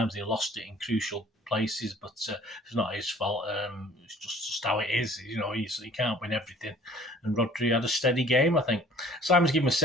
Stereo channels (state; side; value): normal; both; correlation 0.52